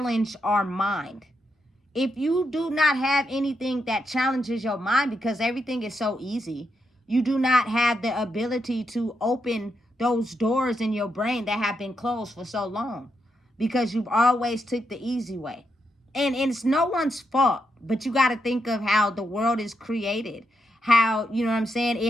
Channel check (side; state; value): both; normal; correlation 0.82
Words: our mind. If you do not have anything that challenges your mind, because everything is so easy, you do not have the ability to open those doors in your brain that have been closed for so long, because you've always took the easy way. And it's no one's fault, but you got to think of how the world is created, how, you know what I'm saying,